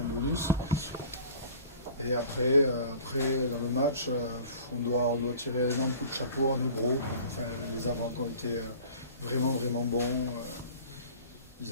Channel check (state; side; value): inverted; both; correlation -0.45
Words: de bonus. Et après dans le match, on doit tirer un énorme coup de chapeau à nos gros. Enfin, les avants qui ont été vraiment bons. Ils